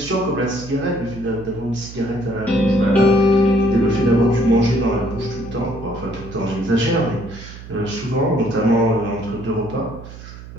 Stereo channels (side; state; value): right; noise; hum, 15 dB below the sound